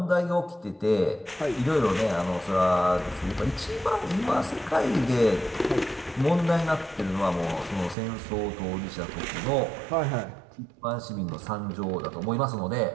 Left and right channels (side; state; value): left; drops out; at 8.0 s